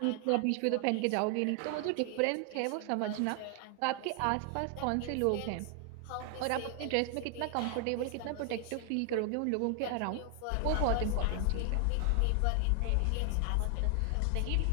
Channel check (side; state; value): both; different; correlation 0.00